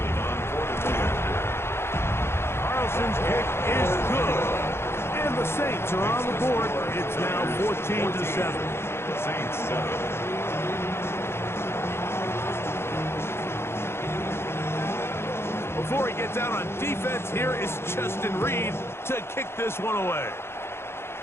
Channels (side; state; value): right; late; 0.12 ms